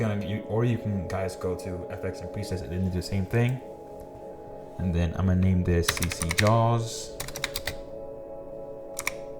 guys go to FX and presets and do the same thing. And then I'm gonna name this CC Jaws.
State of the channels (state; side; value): identical; both; correlation 1.00